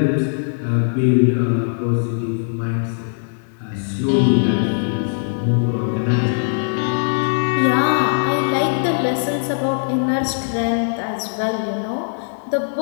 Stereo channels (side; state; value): right; silent; digital silence